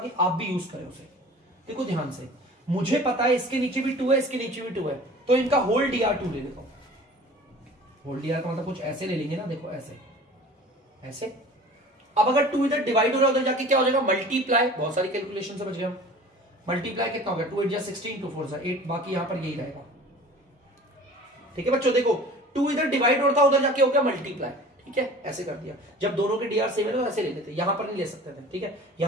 आप भी यूज करें उसे। देखो ध्यान से, मुझे पता है इसके नीचे भी 2 है, इसके नीचे भी 2 है, तो इनका होल dr2 ले लेता हूं। होल dr का मतलब कुछ ऐसे ले लेंगे ना, देखो ऐसे ऐसे। अब अगर 2 इधर डिवाइड हो रहा है उधर जाके क्या हो जाएगा मल्टीप्लाई, बहुत सारी कैलकुलेशन से बच गए हम। मल्टीप्लाई कितना हो गया 2 8 16, 2 4 8, बाकी यहां पर यही रहेगा, ठीक है बच्चों। देखो 2 इधर डिवाइड होता उधर जाके हो गया मल्टीप्लाई, ठीक है, ऐसे कर दिया। जब दोनों के dr सेम है तो ऐसे ले लेते, यहां पर नहीं ले सकते थे, ठीक है।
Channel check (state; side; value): normal; both; correlation 0.43